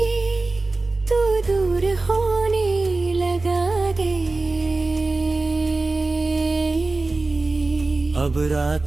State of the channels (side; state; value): left; quieter; 3.3 dB